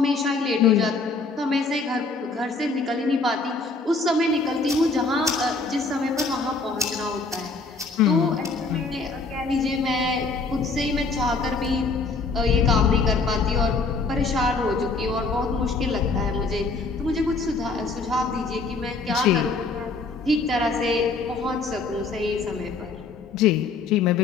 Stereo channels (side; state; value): right; quieter; 3.9 dB